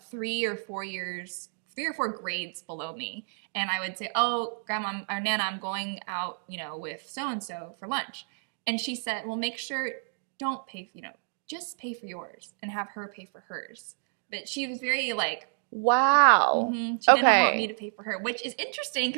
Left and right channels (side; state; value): left; silent; digital silence